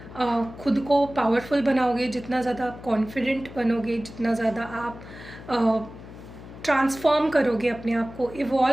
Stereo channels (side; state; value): left; noise; hum, 16 dB below the sound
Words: खुद को पावरफुल बनाओगे, जितना ज़्यादा आप कॉन्फिडेंट बनोगे, जितना ज़्यादा आप ट्रांसफॉर्म करोगे, अपने आप को